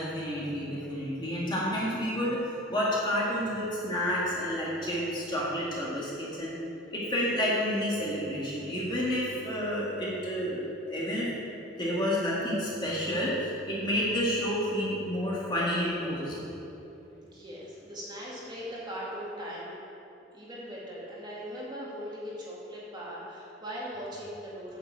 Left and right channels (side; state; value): both; normal; correlation 0.36